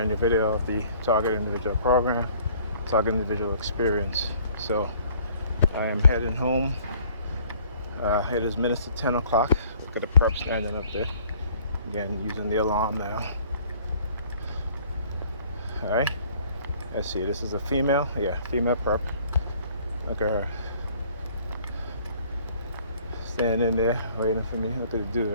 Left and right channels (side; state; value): both; inverted; correlation -0.57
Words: new video of the Target Individual program, Target Individual Experience. So I am heading home. It is minutes to 10 o'clock. Look at the prep standing up there. Again, using the alarm now. All right, let's see, this is a female, female prep. Look at her. Standing there, waiting for me. Look at the dude